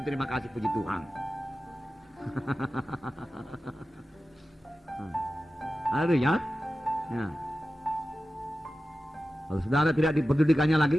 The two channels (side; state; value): both; normal; correlation 0.94